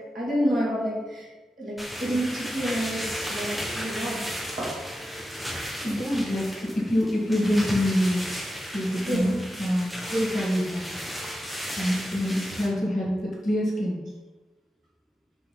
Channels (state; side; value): normal; both; correlation 0.91